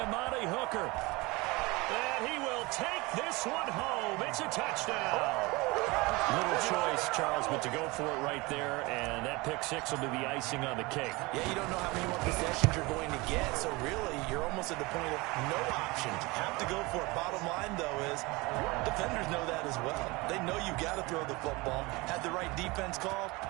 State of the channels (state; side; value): quieter; left; 23.9 dB